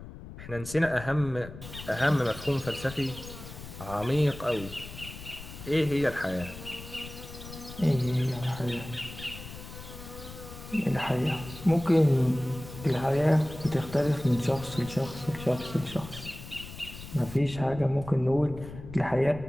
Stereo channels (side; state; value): left; noise; rumble, 13 dB below the sound